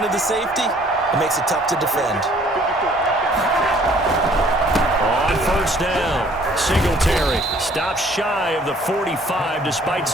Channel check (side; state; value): both; normal; correlation 0.58